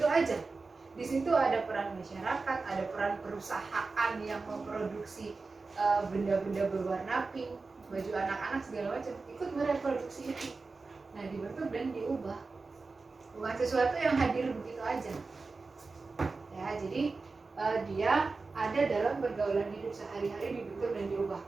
aja. Di situ ada peran masyarakat, ada peran perusahaan yang memproduksi benda-benda berwarna pink, baju anak-anak segala macam, ikut mereproduksi itu. Nah, dibentuk dan diubah. Bukan sesuatu yang hadir begitu aja. Ya, jadi dia ada dalam pergaulan hidup sehari-hari, dibentuk dan diubah.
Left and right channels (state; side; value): quieter; left; 4.0 dB